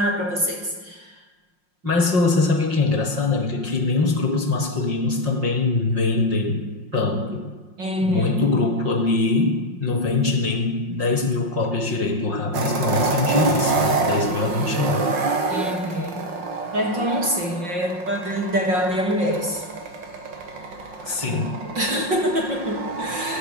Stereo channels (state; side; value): late; left; 5.6 ms